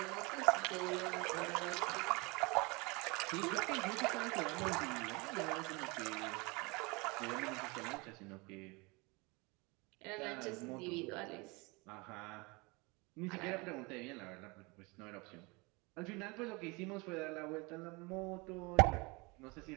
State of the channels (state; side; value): quieter; left; 26.7 dB